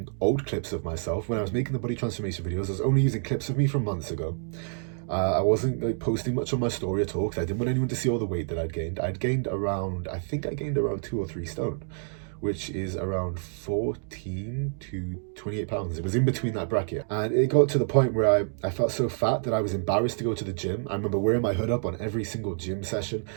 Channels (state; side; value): silent; left; 57 dB below the other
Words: old clips of myself. When I was making the body transformation videos, I was only using clips of me from months ago. I wasn't like posting much on my story at all because I didn't want anyone to see all the weight that I'd gained. I gained around 2 or 3 stone, which is around 14 to 28 pounds. It was in between that bracket. And it got to the point where I felt so fat that I was embarrassed to go to the gym. I remember wearing my hood up on every single gym session,